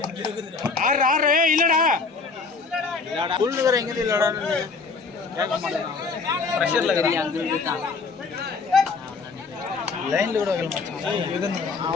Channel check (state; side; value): quieter; right; 4.5 dB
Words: இல்லடா புல்லுகிற எங்க இல்லடா கேட்க மாட்டேன். பிரஷர்ல லைன்ல கூட வைக்கல மச்சான்.